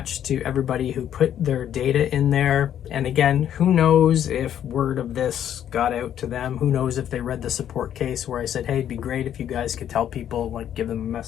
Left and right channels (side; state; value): right; quieter; 10.2 dB